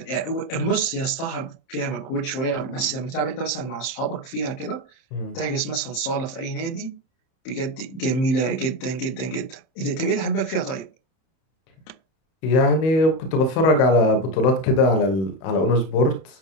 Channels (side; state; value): right; late; 30 ms